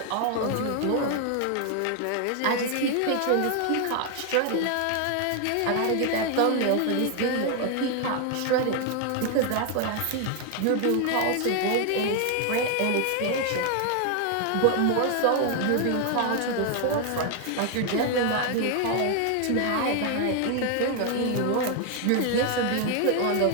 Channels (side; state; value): both; different; correlation 0.01